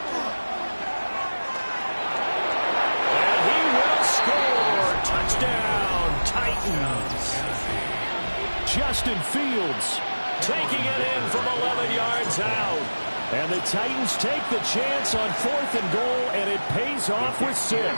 And he will score. Touchdown, Titans. Justin Fields taking it in from 11 yards out. And the Titans take the chance on 4th and goal, and it pays off with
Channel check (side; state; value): both; inverted; correlation -1.00